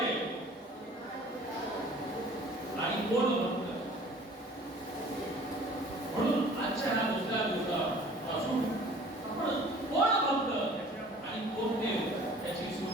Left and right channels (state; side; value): normal; both; correlation 0.49